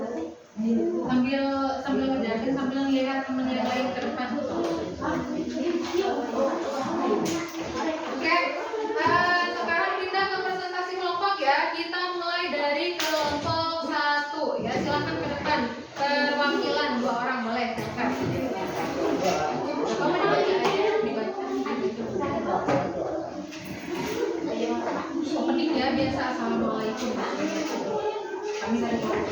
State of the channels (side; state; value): both; identical; correlation 1.00